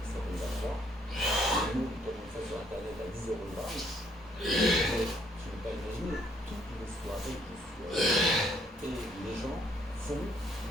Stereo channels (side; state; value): both; normal; correlation 0.67